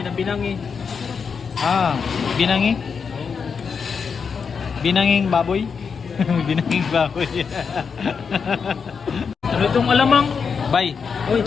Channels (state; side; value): quieter; right; 5.9 dB